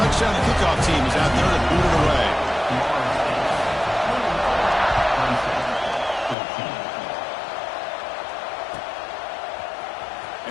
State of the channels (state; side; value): drops out; right; at 6.4 s